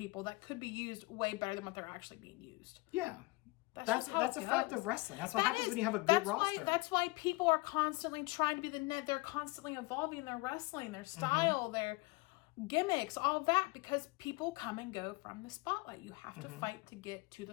that could be used way better than what they're actually being used. Yeah. That's a fact of wrestling. That's what happens when you have a good roster. That's why people are constantly trying to be the net. They're constantly evolving their wrestling, their style, their gimmicks, all that, because people come and go from the spotlight. You have to fight to get to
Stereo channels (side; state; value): right; quieter; 24.3 dB